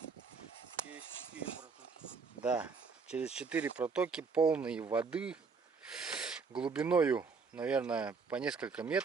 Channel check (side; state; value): left; quieter; 5.0 dB